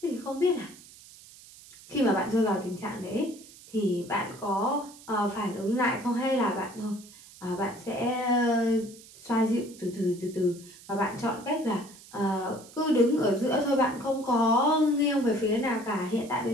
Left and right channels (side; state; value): right; noise; hiss, 20 dB below the sound